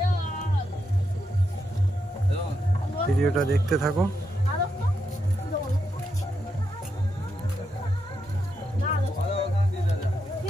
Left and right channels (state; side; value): normal; both; correlation 0.83